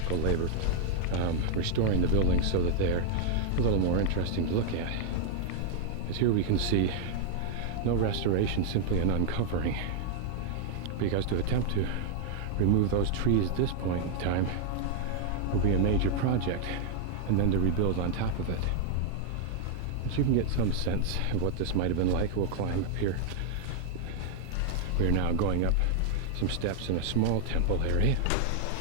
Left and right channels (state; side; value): different; both; correlation 0.00